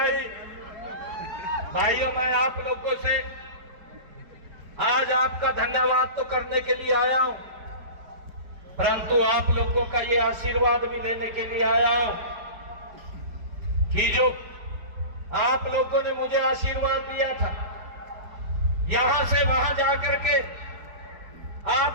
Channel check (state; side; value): late; left; 4.7 ms